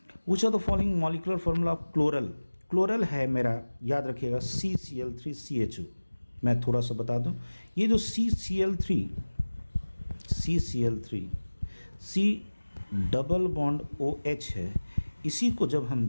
Which of the following molecular formula of chloral, chloral है मेरा, याद रखिएगा CCl3CHO। मैं थोड़ा सा बता दूं, ये जो CCl3 C double bond OH है, इसी को जब हम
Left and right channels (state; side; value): inverted; both; correlation -1.00